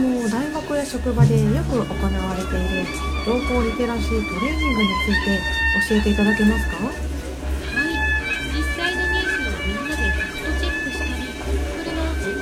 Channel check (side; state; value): both; identical; correlation 1.00